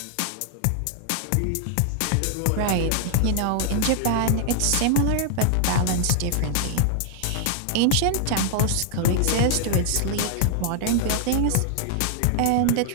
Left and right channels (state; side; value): different; both; correlation -0.01